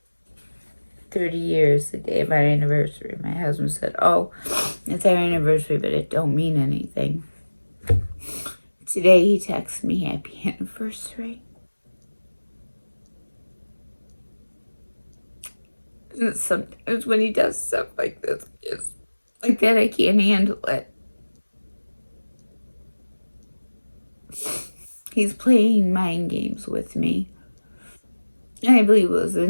30 years, the day of our anniversary, my husband said, oh, it's our anniversary, but it don't mean anything. Today he texts me happy anniversary. And sometimes when he does stuff like this, it's like that, I can't handle it. He's playing mind games with me. And I believe it was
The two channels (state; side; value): inverted; both; correlation -1.00